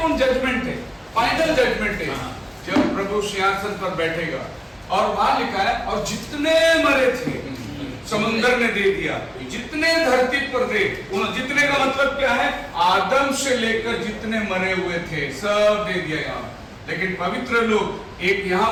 जजमेंट है, फाइनल जजमेंट है, जब प्रभु सिंहासन पर बैठेगा। और वहां लिखा है और जितने मरे थे समुद्र ने दे दिया, जितने धरती पर थे, जितने का मतलब क्या है, आदम से लेकर जितने मरे हुए थे सब दे दिया यहाँ। लेकिन पवित्र लोग एक यहाँ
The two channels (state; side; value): identical; both; correlation 1.00